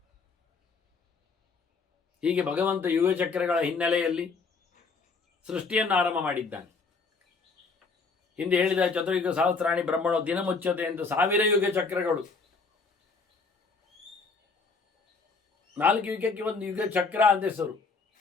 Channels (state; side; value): quieter; right; 4.5 dB